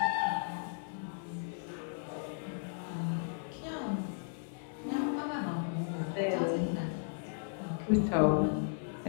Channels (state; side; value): silent; right; digital silence